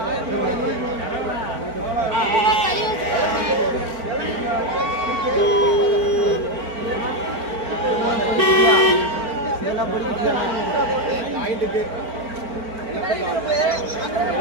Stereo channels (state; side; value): late; left; 4.4 ms